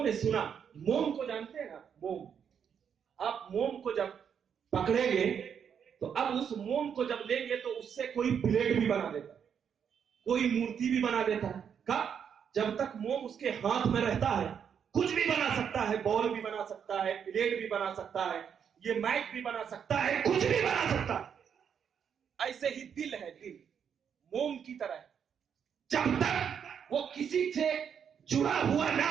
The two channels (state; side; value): quieter; left; 7.7 dB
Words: نے سنا. موم کو جانتے ہیں نا؟ موم. آپ موم کو جب پکڑیں گے تو اب اس موم کو جب لیں گے تو اس سے کوئی پلیٹ بھی بنا دیتا ہے، کوئی مورتی بھی بنا دیتا ہے. کب؟ جب تک موم اس کے ہاتھ میں رہتا ہے کچھ بھی بنا سکتا ہے، بال بھی بنا سکتا ہے، پلیٹ بھی بنا سکتا ہے، یہ مائک بھی بنا سکتا ہے، کچھ بھی بنا سکتا ہے. ایسے ہی دل ہے، دل موم کی طرح ہے. جب تک وہ کسی سے جڑا ہوا نہ